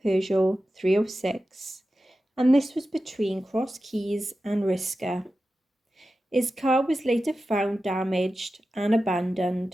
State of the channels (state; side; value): normal; both; correlation 0.93